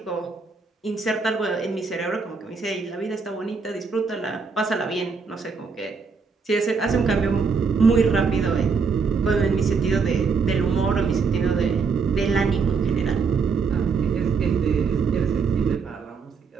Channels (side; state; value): left; quieter; 5.1 dB